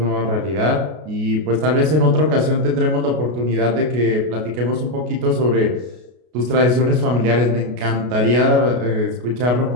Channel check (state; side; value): late; left; 33 ms